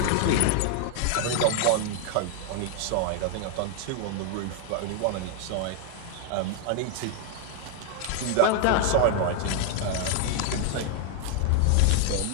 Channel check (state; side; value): different; both; correlation 0.00